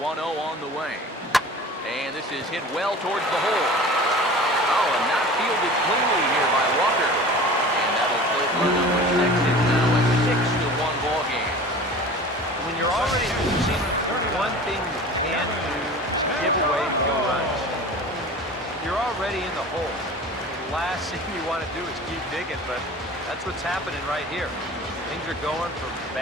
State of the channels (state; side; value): normal; both; correlation 0.39